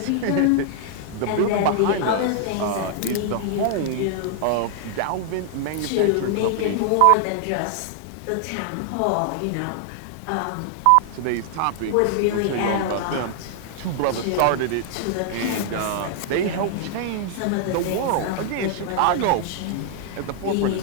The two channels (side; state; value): both; different; correlation -0.01